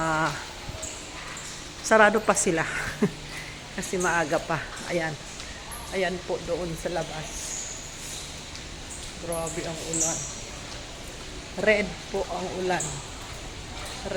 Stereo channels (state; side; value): identical; both; correlation 1.00